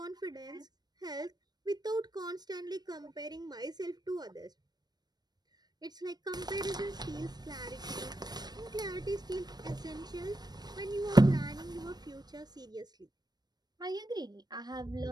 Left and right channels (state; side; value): late; left; 0.19 ms